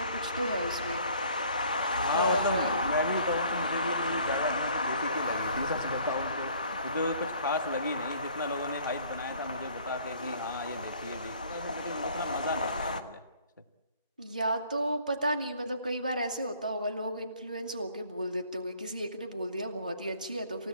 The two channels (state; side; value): inverted; both; correlation -0.56